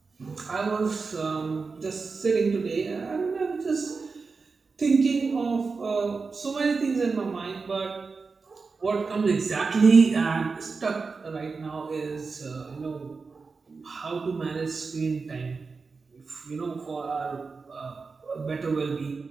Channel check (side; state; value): left; quieter; 4.5 dB